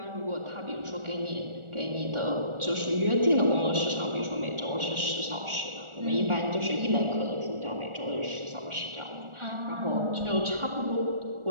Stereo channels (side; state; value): left; late; 1.4 ms